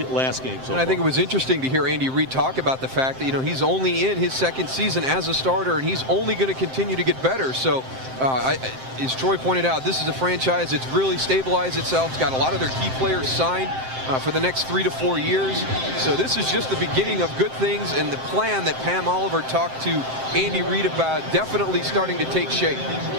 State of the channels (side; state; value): left; late; 7.7 ms